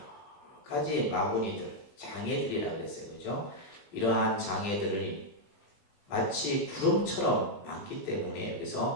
가지 마구니들, 장애들이라고 그랬어요. 그죠? 이러한 장애들이 마치 구름처럼 많기 때문에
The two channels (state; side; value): late; right; 20 ms